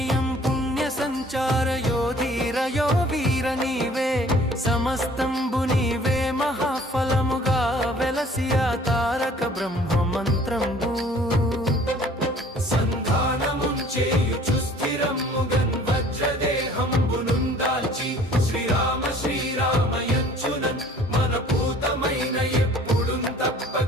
పుణ్య సంచారయో ధీరయో వీర నీవే సమస్తంబు నీవే మహాఫలముగా వెలసియా తారక బ్రహ్మ మంత్రంబు సంధానముంచేయుచు స్థిరమ్ముగన్ వజ్రదేహంబునుందాల్చి శ్రీరామ శ్రీరామయంచునన్ మన పూతమైన ఎప్పుడున్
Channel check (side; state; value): both; normal; correlation 0.53